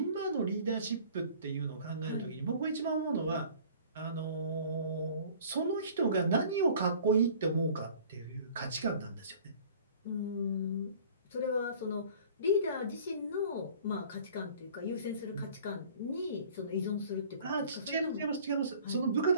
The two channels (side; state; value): both; inverted; correlation -0.49